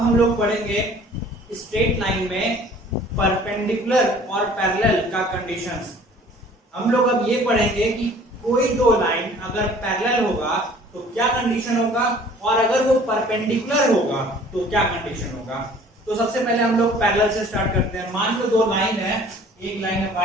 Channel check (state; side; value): normal; both; correlation 0.51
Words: लोग पढ़ेंगे स्ट्रेट लाइन में परपेंडिकुलर और पैरेलल का कंडीशंस। हम लोग अब ये पढ़ेंगे कि कोई दो लाइन अगर पैरेलल होगा तो क्या कंडीशन होगा, और अगर वो परपेंडिकुलर होगा तो क्या कंडीशन होगा। तो सबसे पहले हम लोग पैरेलल से स्टार्ट करते हैं। मान लो दो लाइन है, एक लाइन है